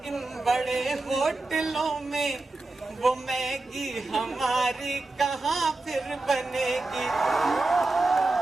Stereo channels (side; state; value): left; quieter; 3.1 dB